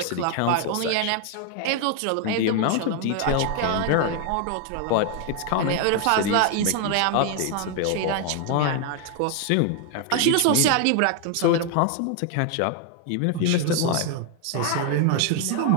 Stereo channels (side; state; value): both; different; correlation 0.00